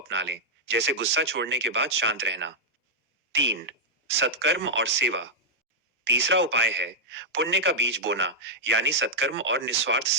लें, जैसे गुस्सा छोड़ने के बाद शांत रहना। 3. सत्कर्म और सेवा। तीसरा उपाय है पुण्य का बीज बोना, यानी सत्कर्म और निस्वार्थ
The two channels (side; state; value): both; normal; correlation -0.05